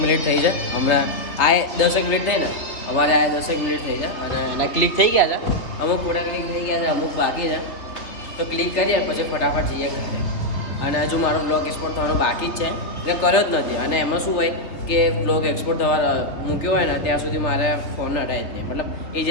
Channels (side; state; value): right; late; 3.1 ms